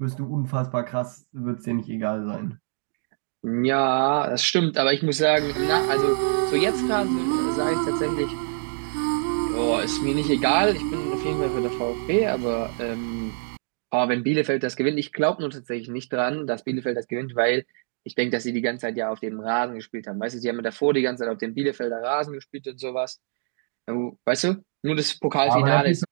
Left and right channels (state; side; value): silent; left; digital silence